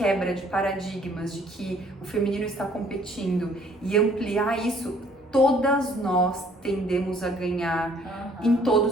de paradigmas de que o feminino está competindo e ampliar isso, todas nós tendemos a ganhar em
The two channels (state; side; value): normal; both; correlation 0.60